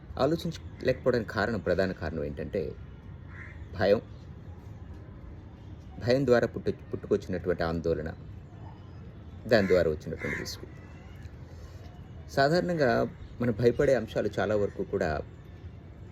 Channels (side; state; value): both; identical; correlation 1.00